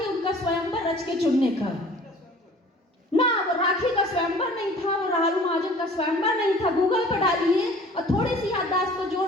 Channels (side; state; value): both; normal; correlation 0.48